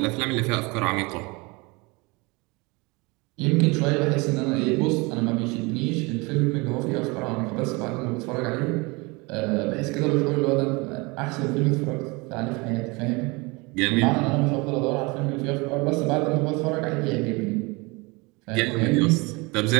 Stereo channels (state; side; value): quieter; left; 26.4 dB